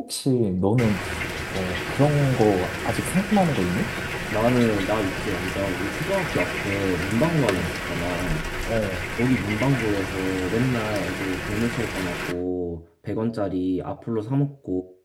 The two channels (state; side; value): identical; both; correlation 1.00